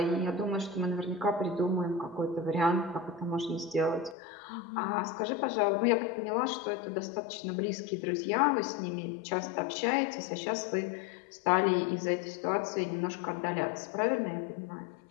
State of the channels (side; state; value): right; drops out; at 4.2 s